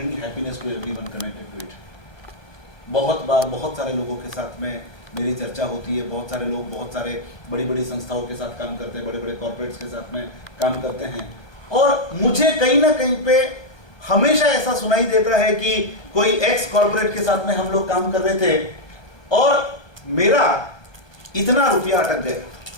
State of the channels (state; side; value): late; right; 1.2 ms